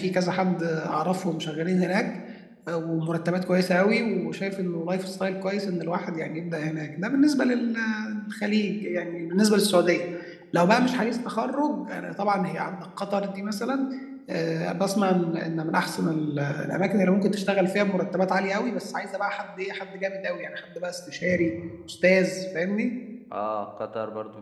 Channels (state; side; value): identical; both; correlation 1.00